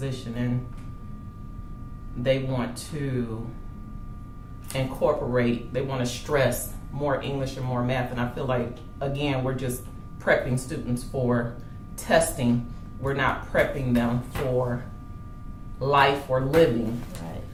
and they want to they want to stress more English and more math. And I feel like, again, we're just prepping students for testing. We're not prepping them for life or living.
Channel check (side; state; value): both; identical; correlation 1.00